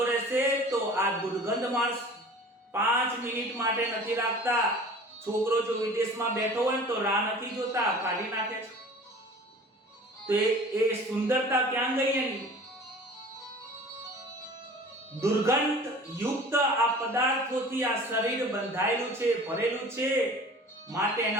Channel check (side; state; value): both; normal; correlation 0.43